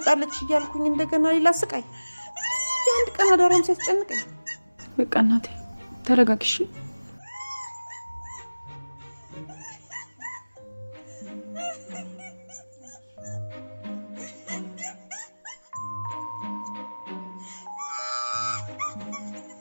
እያልኩኝ እንደገና ሌላ ስቃይ የአንድ ቀን አዳራም ሲያስጨንቀኝ በቃ እናቴ ተረጋግሽ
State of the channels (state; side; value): inverted; both; correlation -1.00